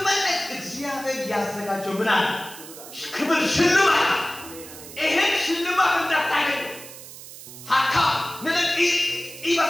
እግዚአብሔር ያዘጋጀው ምን አለ ክብር ሽልማት ይሄን ሽልማት እንዳታገኝ ሀካ ነለቂ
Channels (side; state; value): right; noise; hiss, 15 dB below the sound